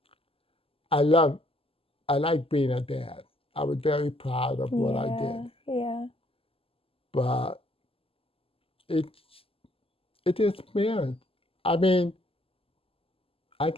I love, I like being a dad. I was very proud of what I did. Yeah. But it's experience. I mean, I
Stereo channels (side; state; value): right; late; 0.27 ms